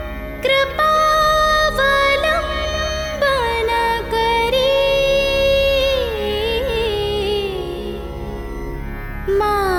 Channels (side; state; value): both; identical; correlation 1.00